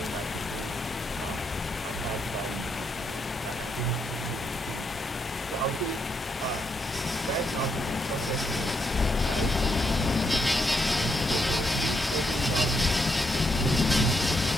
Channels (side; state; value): both; normal; correlation 0.78